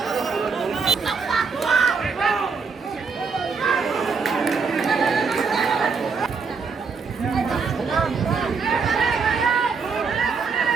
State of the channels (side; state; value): left; quieter; 5.1 dB